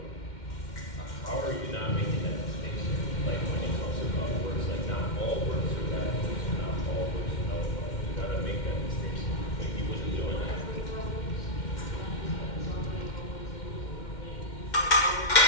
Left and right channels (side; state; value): right; late; 2.1 ms